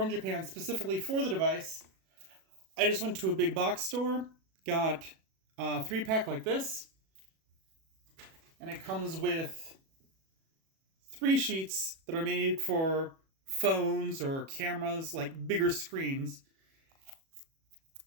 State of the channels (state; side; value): late; left; 37 ms